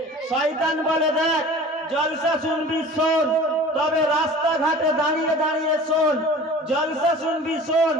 শয়তান বলে দেখ, জলসা শুনবি শোন, তবে রাস্তাঘাটে দাঁড়িয়ে দাঁড়িয়ে শোন। জলসা শুনবি শোন,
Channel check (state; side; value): normal; both; correlation 0.42